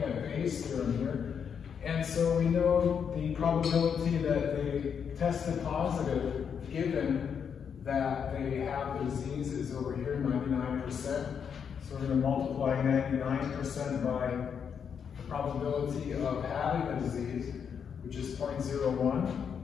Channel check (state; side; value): quieter; right; 7.2 dB